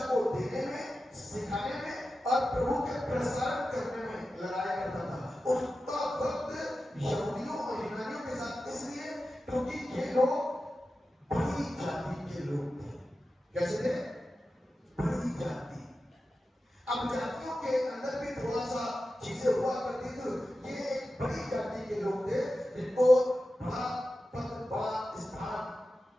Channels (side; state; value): both; normal; correlation 0.93